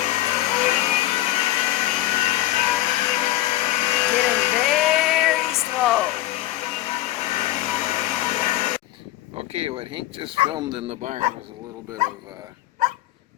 Okay, what Hank just filmed in the barn was a little bit of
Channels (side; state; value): right; quieter; 16.1 dB